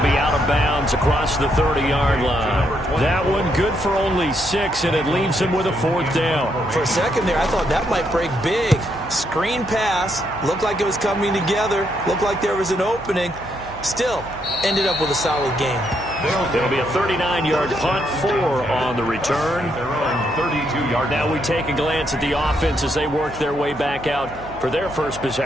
out of bounds across the 30-yard line. That one good for only 6, and it leaves him with a 4th down. For a second there, I thought that might break big. Screen pass. Looked like it was coming together. Looked like there was an opening. Still, ended up with a solid game. It'll be a 39-yard punt, 4 on the return. Their own 32-yard. Now we take a glance at the offense as they work their way back out for their first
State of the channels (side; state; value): right; noise; hum, 18 dB below the sound